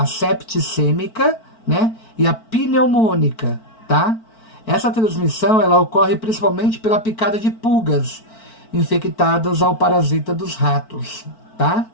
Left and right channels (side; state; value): right; late; 4.5 ms